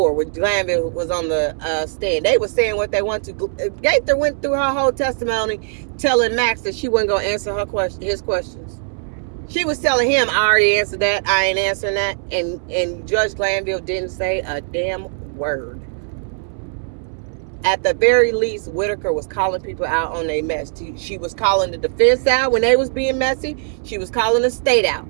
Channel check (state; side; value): silent; left; 63 dB below the other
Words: when Glanville was on the stand. They were saying what they want to. Gaither went through her whole testimony telling Max that she wasn't going to answer his questions. She was telling him, I already answered that, I ain't answering that. And Judge Glanville didn't say a damn word. At the very least, Whitaker was calling people out on their mess. She was calling the defense out when they was being messy. She was calling the state out